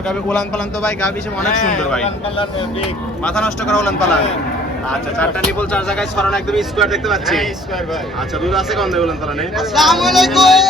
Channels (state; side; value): normal; both; correlation 0.55